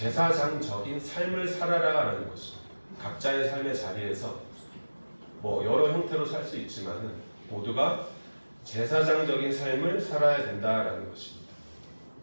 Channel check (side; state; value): both; inverted; correlation -1.00